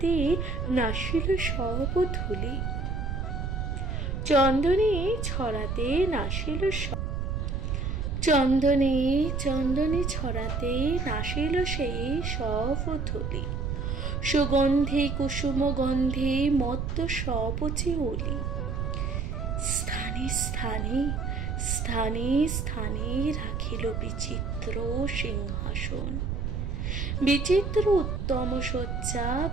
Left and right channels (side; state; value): right; noise; rumble, 2 dB below the sound